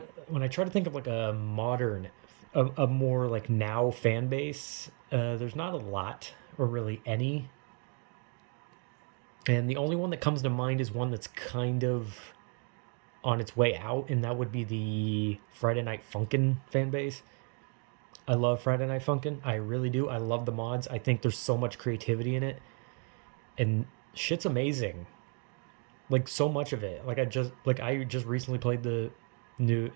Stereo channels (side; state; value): left; quieter; 39.1 dB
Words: when I try to think of like a modern, a more like now fan base, there's not a lot or really any. And the only one that comes to mind is one that's kind of on its way out, and that would be the Friday Night Funkin' fan base. I love Friday Night Funkin'. I really do. I love the mods. I think there's so much creativity in it, and shit's amazing. Like so much of it. I just recently played the